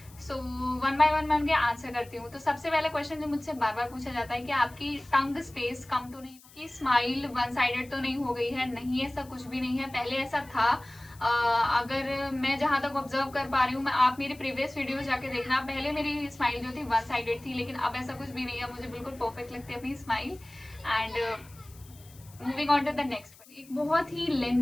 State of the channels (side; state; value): left; noise; hiss, 23 dB below the sound